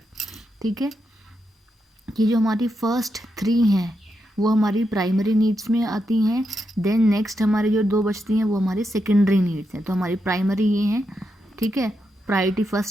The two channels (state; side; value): normal; both; correlation 0.84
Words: ठीक है, ये जो हमारी फर्स्ट 3 हैं वो हमारी प्राइमरी नीड्स में आती हैं। देन नेक्स्ट हमारी जो 2 बचती हैं वो हमारी सेकेंडरी नीड्स हैं। तो हमारी प्राइमरी ये हैं, ठीक है, प्रायोरिटी